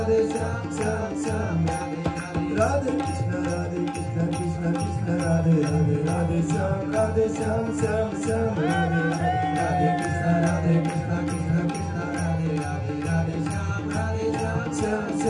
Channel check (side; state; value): both; identical; correlation 1.00